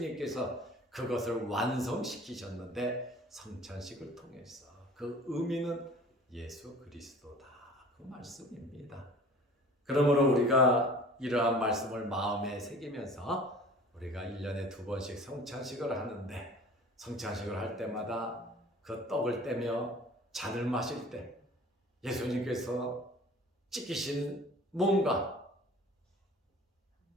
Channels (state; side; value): normal; both; correlation 0.46